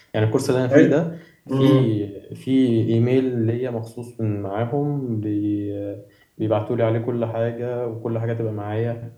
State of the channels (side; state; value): both; identical; correlation 1.00